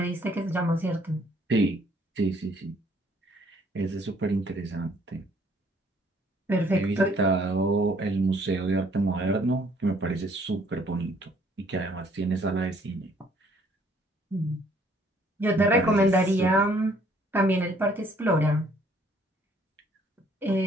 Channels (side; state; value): both; normal; correlation 0.62